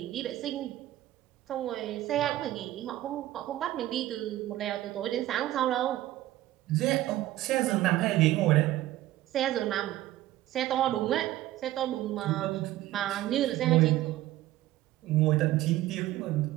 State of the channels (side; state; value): left; quieter; 15.1 dB